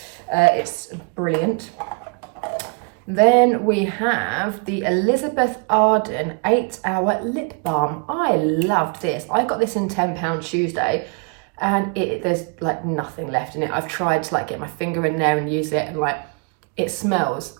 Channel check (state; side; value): quieter; left; 35.5 dB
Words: It's brilliant. Then we have the Elizabeth Arden 8-Hour Lip Balm. I loved this. I got this in £10 Tuesday. And there's like nothing left in it. I've tried to like get my finger in there and use it, and like it smells